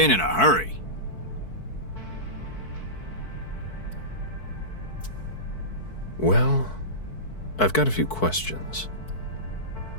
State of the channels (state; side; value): late; right; 4.6 ms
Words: in a hurry. Well, I've got a few questions.